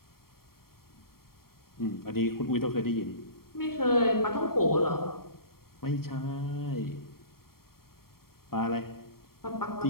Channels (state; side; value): late; right; 0.94 ms